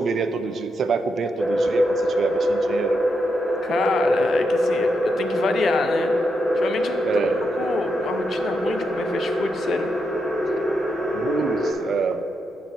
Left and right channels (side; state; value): both; normal; correlation 0.83